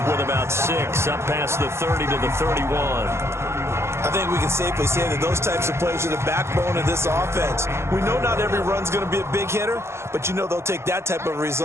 with about 6 up past the 30 to the 31. I think we can safely say that those types of plays are the backbone of this offense. We know not every run's going to be a big hitter, but you know they'll take that type of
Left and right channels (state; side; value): late; left; 0.13 ms